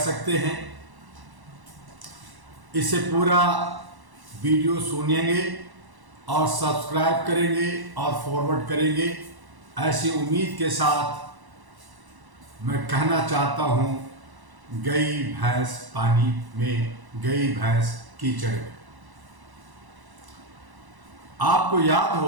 सकते हैं। इसे पूरा वीडियो सुनेंगे और सब्सक्राइब करेंगे और फॉरवर्ड करेंगे, ऐसी उम्मीद के साथ मैं कहना चाहता हूं, गई भैंस पानी में, गई भैंस कीचड़ में। आपको याद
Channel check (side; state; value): left; late; 1.1 ms